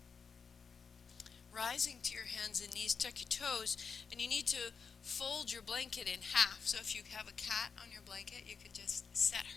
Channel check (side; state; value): right; quieter; 5.8 dB